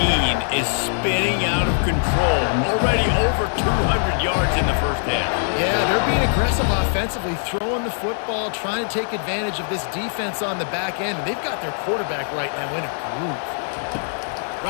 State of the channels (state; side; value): silent; right; digital silence